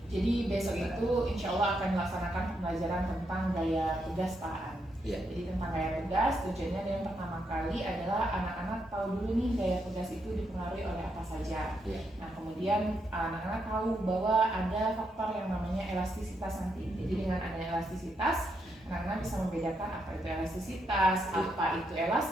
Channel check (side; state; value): both; normal; correlation 0.80